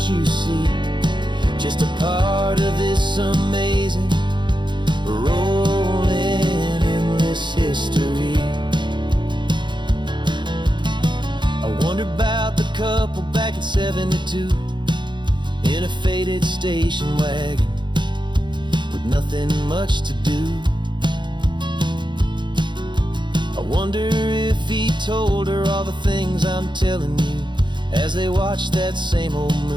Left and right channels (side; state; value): left; late; 0.23 ms